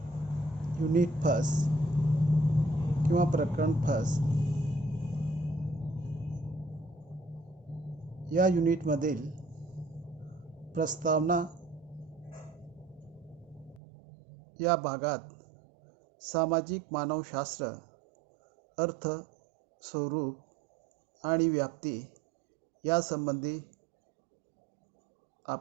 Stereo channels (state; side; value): drops out; left; at 13.8 s